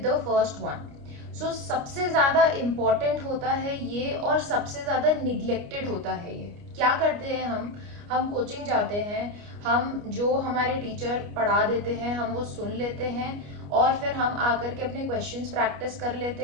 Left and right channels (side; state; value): left; late; 29 ms